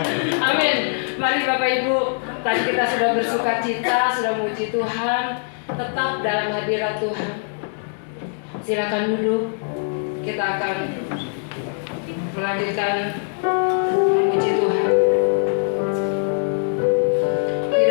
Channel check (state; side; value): silent; right; digital silence